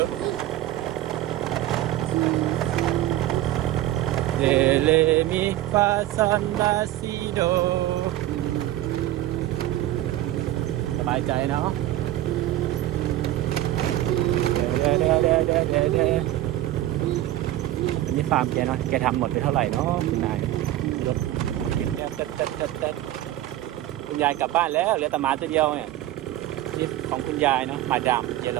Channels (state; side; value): quieter; left; 14.5 dB